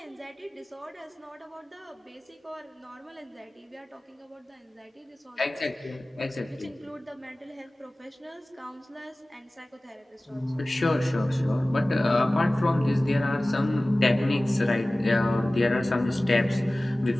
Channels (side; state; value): both; normal; correlation 0.98